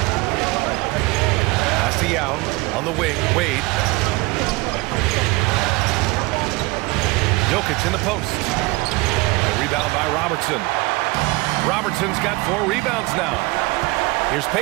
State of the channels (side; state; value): left; quieter; 23.1 dB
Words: Pass to Yao on the wing. Wade. Jokic in the post. The rebound by Robertson. Robertson's got 4 rebounds now. Here's